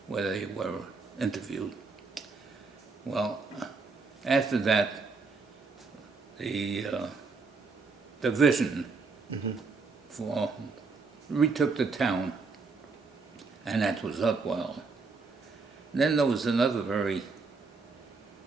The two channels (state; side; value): quieter; left; 4.4 dB